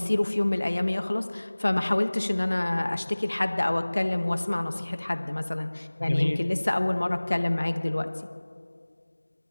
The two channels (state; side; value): inverted; both; correlation -1.00